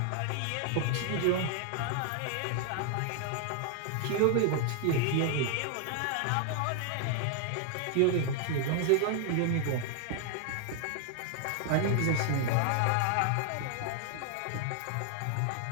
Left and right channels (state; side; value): different; both; correlation 0.00